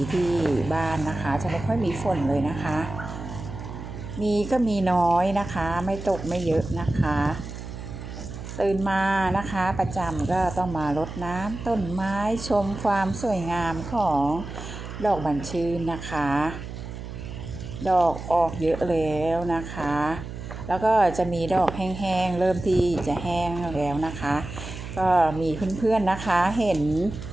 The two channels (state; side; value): noise; right; hum, 10 dB below the sound